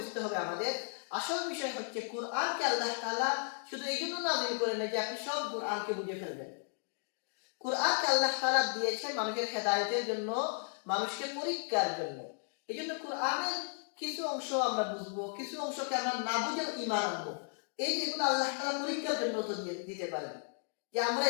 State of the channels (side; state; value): right; silent; 55 dB below the other